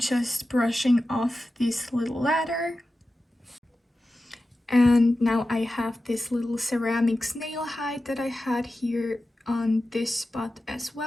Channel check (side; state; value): both; normal; correlation 0.93